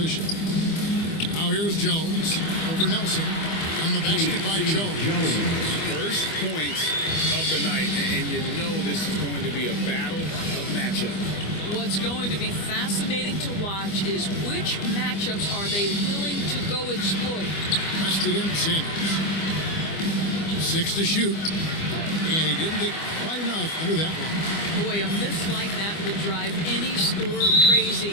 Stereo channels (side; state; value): right; late; 25 ms